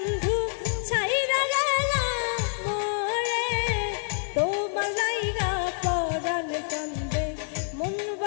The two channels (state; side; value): silent; right; 60 dB below the other